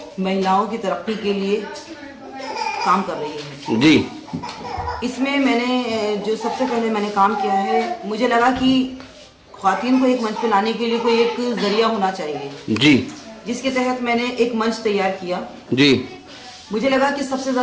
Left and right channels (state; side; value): identical; both; correlation 1.00